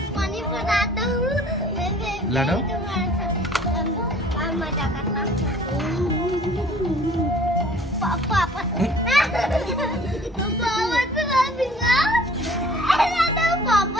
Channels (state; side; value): normal; both; correlation 0.52